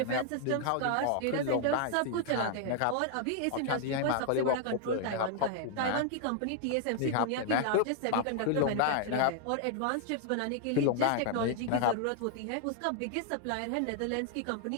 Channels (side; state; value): both; different; correlation 0.00